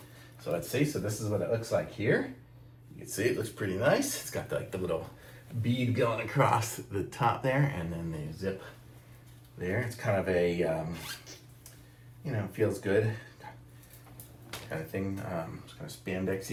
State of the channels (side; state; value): both; identical; correlation 1.00